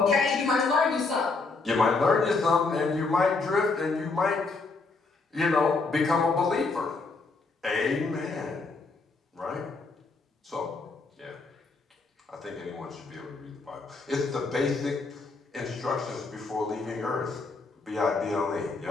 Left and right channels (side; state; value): right; quieter; 3.9 dB